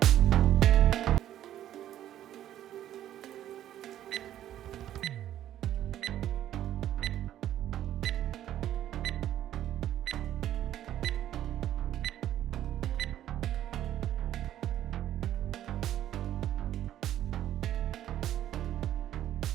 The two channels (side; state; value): left; quieter; 11.8 dB